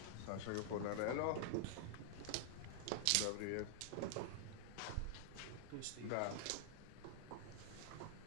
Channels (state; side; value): different; both; correlation -0.01